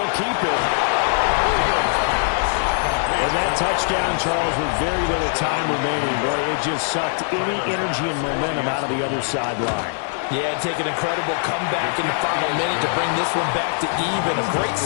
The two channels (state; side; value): silent; right; digital silence